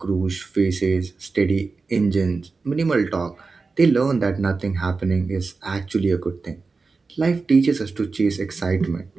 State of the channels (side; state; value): left; quieter; 4.2 dB